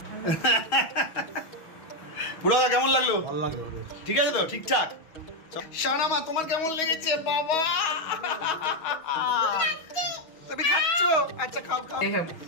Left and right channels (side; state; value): right; late; 6.3 ms